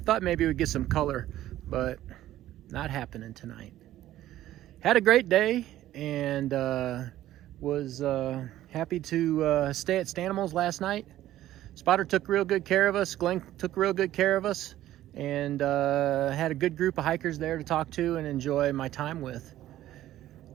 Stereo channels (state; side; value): quieter; left; 13.7 dB